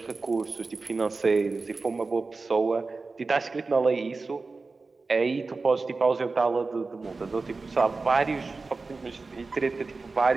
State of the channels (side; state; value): left; quieter; 3.9 dB